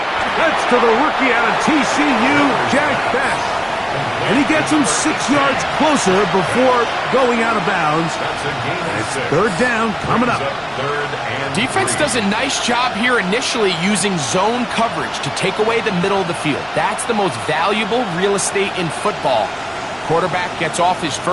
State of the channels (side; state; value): both; identical; correlation 1.00